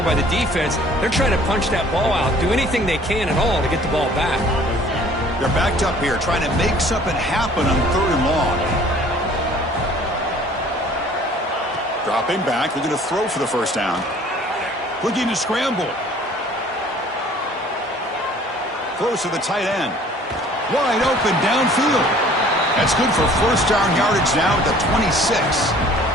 by the defense. They're trying to punch that ball out, do anything they can at all to get the ball back. They're backed up here trying to make something happen on 3rd and long. Dropping back, looking to throw for the 1st down. Looking to scramble. Throws to the tight end. Wide open downfield. That's good for 1st down yardage now at the 26.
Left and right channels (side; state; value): both; normal; correlation 0.53